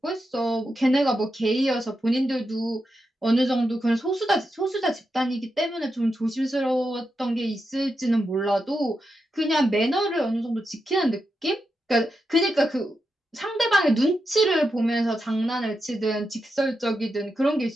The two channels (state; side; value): normal; both; correlation 0.87